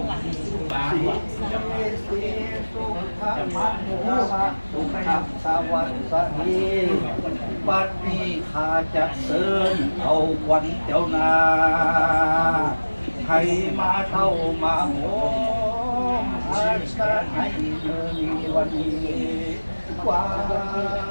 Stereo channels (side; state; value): both; inverted; correlation -1.00